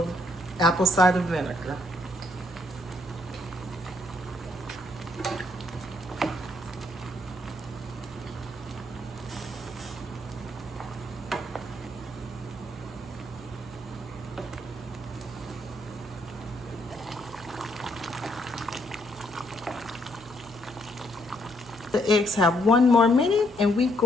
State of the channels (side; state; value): right; noise; hum, 21 dB below the sound